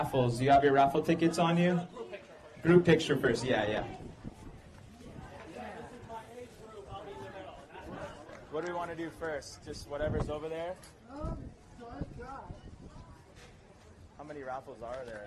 Do you have your raffle tickets on you? Group picture first. Yeah. What do we want to do first? Just whatever's over there? How many raffles are there?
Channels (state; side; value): identical; both; correlation 1.00